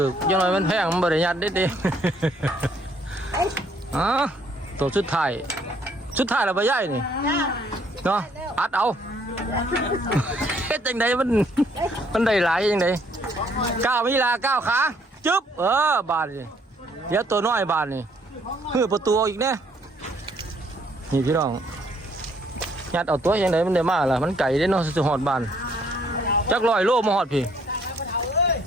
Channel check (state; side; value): normal; both; correlation 0.65